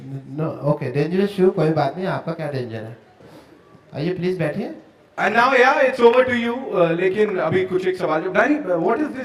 नो ओके, डेंजरस शू, कोई बात नहीं, आपका क्या डेंजर है? आइए प्लीज बैठिए। And now yeah, it's over to you. लेकिन अभी कुछ एक सवाल जो Danny, what is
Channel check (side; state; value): both; identical; correlation 1.00